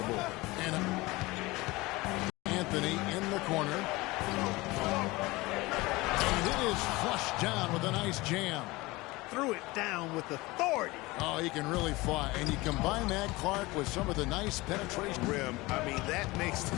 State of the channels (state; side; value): quieter; right; 21.6 dB